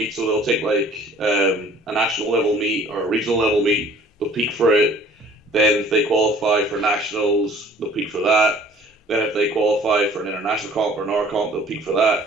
so they'll take like a national level meet or a regional level meet, they'll peak for it. Then if they qualify for nationals, they'll peak for that. Then if they qualify for an international comp or an R comp, they'll peak for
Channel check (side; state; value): both; normal; correlation 0.52